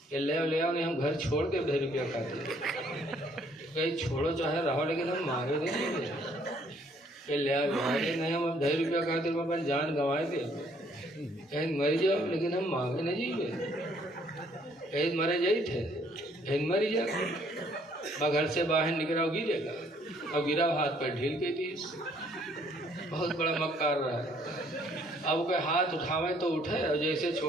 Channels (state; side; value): normal; both; correlation 0.64